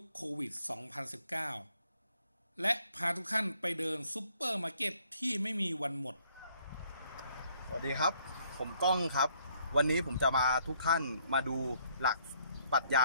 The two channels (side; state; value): both; inverted; correlation -0.66